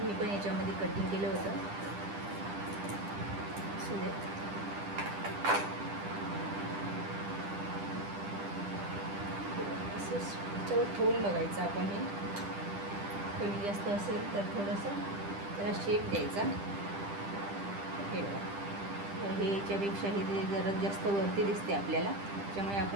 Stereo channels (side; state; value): left; late; 10 ms